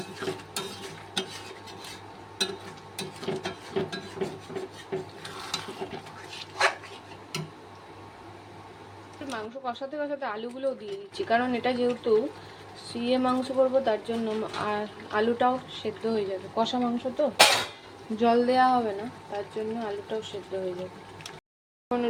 মাংস কষাতে কষাতে আলুগুলোও দিয়ে দিচ্ছি, কারণ এটা যেহেতু সিয়ে মাংস করবো, তার জন্য আর আলুটাও সেদ্ধ হয়ে যাবে। কষা মাংস তো জল দেওয়া হবে না, তার জন্য আলুটাও সেদ্ধ হয়ে যাবে। এখন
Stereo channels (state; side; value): identical; both; correlation 1.00